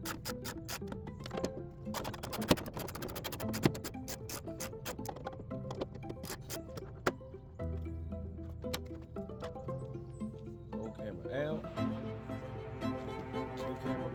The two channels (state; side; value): identical; both; correlation 1.00